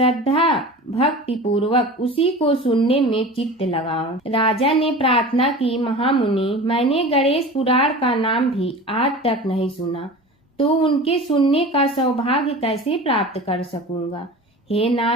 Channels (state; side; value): normal; both; correlation 0.35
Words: भक्ति पूर्वक उसी को सुनने में चित्त लगाओ। राजा ने प्रार्थना की, महामुनि, मैंने गणेश पुराण का नाम भी आज तक नहीं सुना, तो उनके सुनने का सौभाग्य कैसे प्राप्त कर सकूंगा? हे